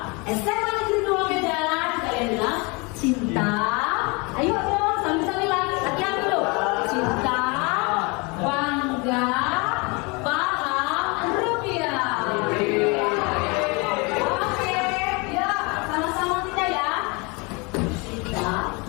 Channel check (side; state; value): right; quieter; 28.8 dB